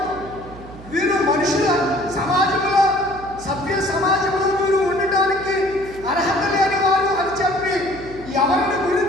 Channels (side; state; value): right; noise; hum, 16 dB below the sound